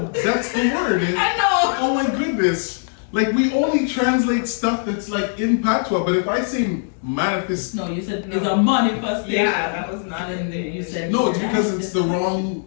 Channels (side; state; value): right; silent; digital silence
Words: that's the word. I know. Oh my goodness. Like we only translate stuff that's like in patois, but if I say manifest, No, you said it's a manifestation. Yeah, that was not And in then there. you said no, it's because it's the wrong